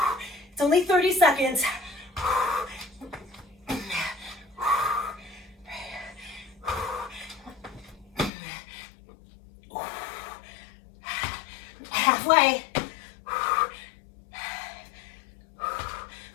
It's only 30 seconds. Halfway.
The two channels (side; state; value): right; drops out; at 8.3 s